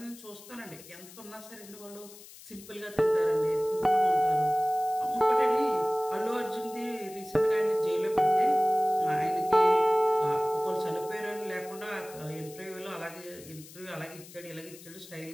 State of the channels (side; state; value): left; noise; hiss, 19 dB below the sound